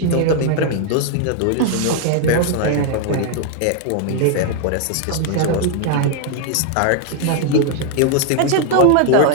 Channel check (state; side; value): different; both; correlation 0.00